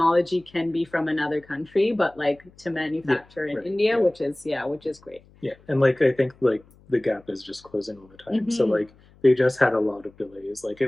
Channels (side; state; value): left; noise; hum, 28 dB below the sound